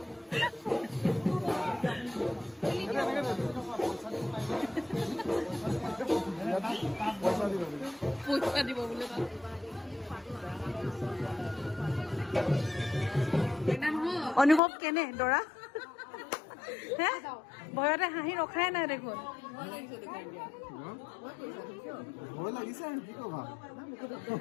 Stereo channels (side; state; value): right; drops out; at 14.6 s